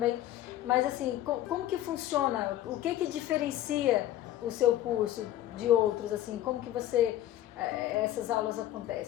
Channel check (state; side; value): quieter; right; 13.3 dB